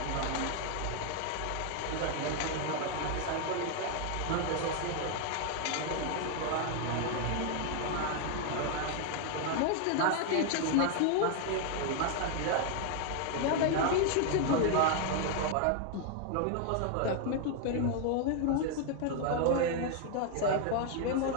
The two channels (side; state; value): both; different; correlation 0.00